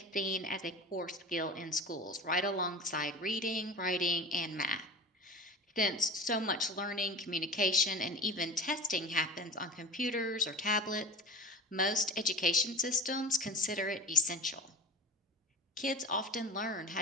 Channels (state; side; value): normal; both; correlation 0.32